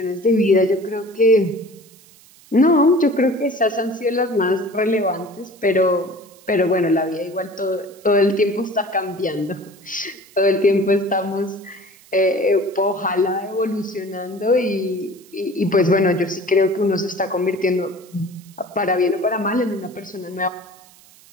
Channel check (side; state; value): right; noise; hiss, 26 dB below the sound